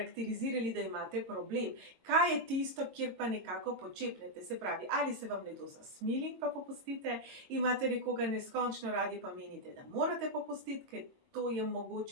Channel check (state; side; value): late; left; 22 ms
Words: da imate problem. Kaj je tisto, kjer pa nekako počepnete? Se pravi, ali se vam nekdo zasmili, pa popustite, imate nekoga neskončno radi, pa menite, da morate popustiti, ker to je